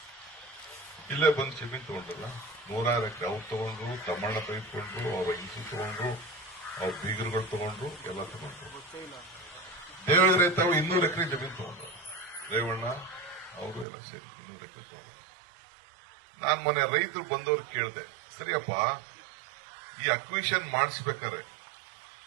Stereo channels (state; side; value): drops out; left; at 13.9 s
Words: ಇಲ್ಲೇ ಬಂದು ಜಮೀನ್ ತಗೊಂಡ್ರಲ್ಲ. 106 ಎಕರೆ ಅವ್ರು ತಗೊಂಡ್ರು, ತಮ್ಮಣ್ಣ ತೆಗೆದುಕೊಂಡ್ರು, ಅವ್ರ ಹಿಂಸು ತಗೊಂಡ್ರು, ಅವ್ರ ಬೀಗರುಗಳು ತಗೊಂಡ್ರು, ಎಲ್ಲ ತಗೊಂಡ್ರು. ದೇವೇಂದ್ರ ತಾವು 200 ಎಕರೆ ಜಮೀನು ತಗೊಂಡ್ರು. ರೇವಣ್ಣ ಅವರು ಎಲ್ಲ ಸೇರಿ 200 ಎಕರೆ ತಗೊಂಡ್ರು. ನಾನ್ ಮೊನ್ನೆ ರೈತರು ಬಂದವ್ರು ಕೇಳಿದೆ, ಸರಿಯಪ್ಪ ಈ ಅಕ್ವಿಷನ್ ಮಾಡಿಸ್ಬೇಕಾದ್ರೆ